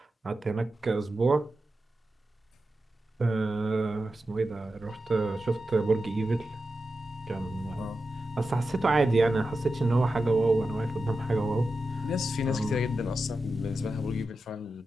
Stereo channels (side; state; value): both; normal; correlation 0.91